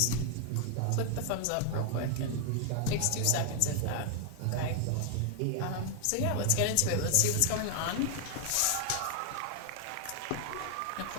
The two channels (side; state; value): both; different; correlation 0.00